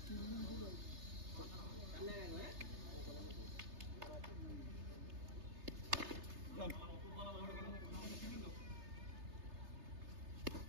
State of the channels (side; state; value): left; late; 3.3 ms